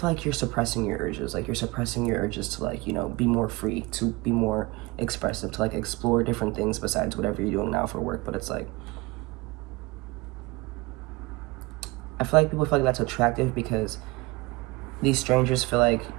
like you're suppressing your urges. Like, you're suppressing your urges to, like, you know, be more free, to be more expressive, to, like, explore different things besides whatever you're doing now for work. But it's like, I feel like people feel like that's attractive because these strangers feel like,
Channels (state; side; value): quieter; left; 23.1 dB